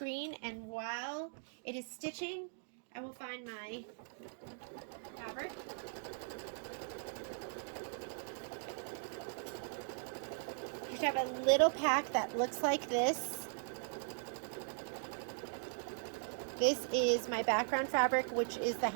and while it is stitching, I will find my fabric. You should have a little pack that looks like this. This is my background fabric, which is the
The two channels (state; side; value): silent; left; digital silence